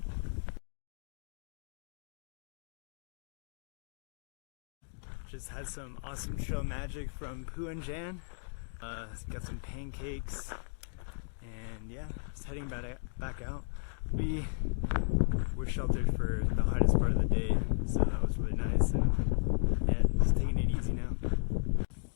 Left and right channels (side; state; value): right; silent; digital silence